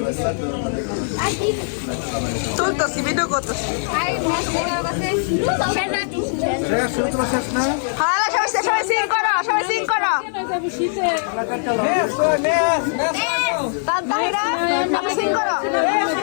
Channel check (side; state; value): right; silent; 63 dB below the other